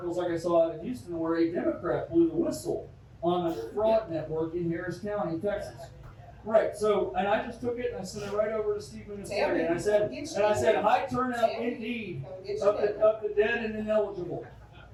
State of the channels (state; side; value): identical; both; correlation 1.00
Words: like I saw out of Houston where a Democrat blew the whistle on a fraud network in Harris County, Texas. Right. So, and I just took it and I sent it right over to Steve Ministeri, and I said, high turnout indeed of the dead and ineligible.